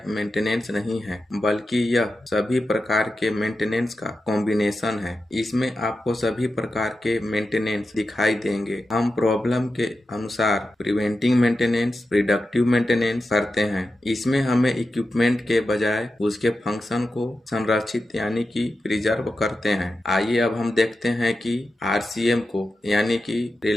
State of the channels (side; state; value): both; normal; correlation 0.91